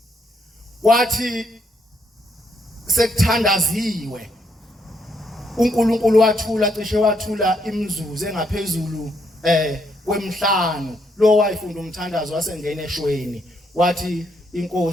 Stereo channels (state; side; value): normal; both; correlation 0.74